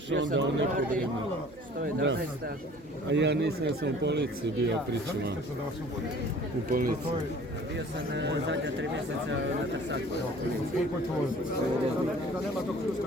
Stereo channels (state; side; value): normal; both; correlation 0.50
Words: onda u neko vrijeme. 111. A ja nisam, ja sam u policiji bio, pričama. U policiji. Bio sam zadnja 3 mjeseca na Trsaku.